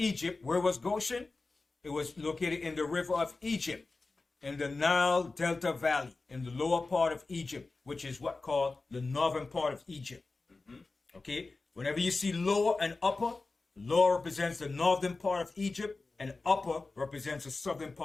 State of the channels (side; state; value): right; quieter; 3.6 dB